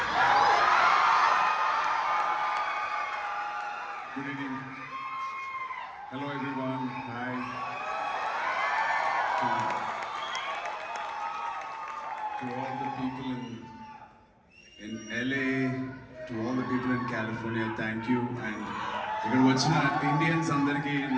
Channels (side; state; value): both; identical; correlation 1.00